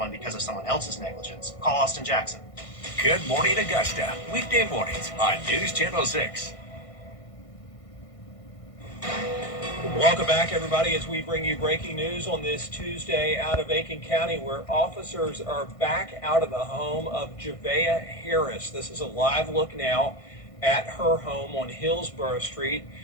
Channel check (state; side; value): late; right; 1.5 ms